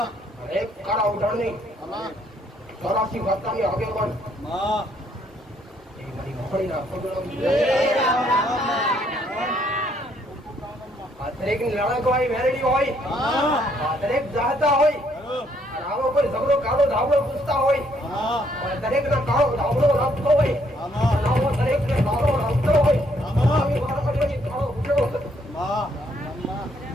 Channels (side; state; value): both; normal; correlation 0.69